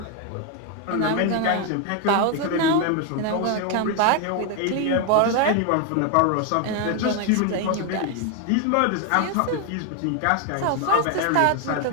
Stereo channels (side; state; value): both; different; correlation 0.01